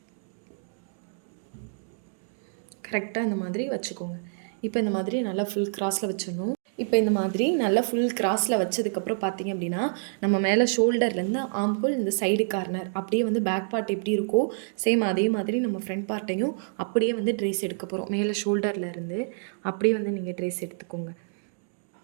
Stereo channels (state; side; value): silent; left; digital silence